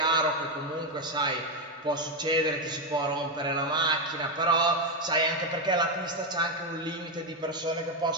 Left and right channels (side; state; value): both; normal; correlation 0.07